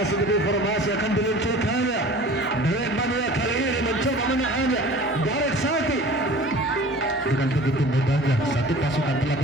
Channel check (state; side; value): normal; both; correlation 0.43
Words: demi formasi akan diluncurkannya. Dewan Mania kali ini mencoba menahannya. Barek Saki dengan begitu mudahnya satu pasukan telah